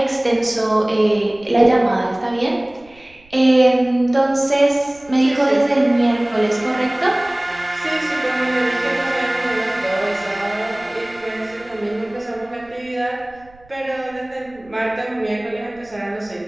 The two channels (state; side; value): noise; right; rumble, 27 dB below the sound